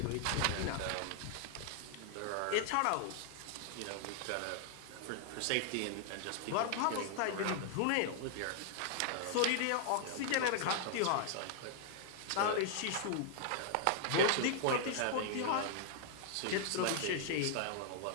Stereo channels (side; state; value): both; different; correlation -0.01